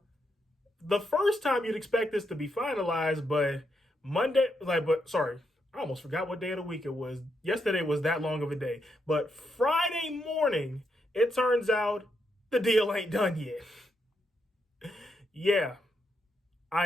the first time you'd expect this to be finalized, but I almost forgot what day of the week it was. Yesterday was that long of a day. But Friday morning, it turns out the deal ain't done yet. Yeah,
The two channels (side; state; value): both; normal; correlation 0.80